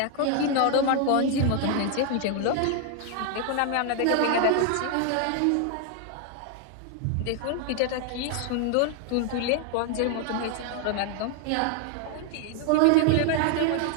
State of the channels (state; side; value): different; both; correlation 0.00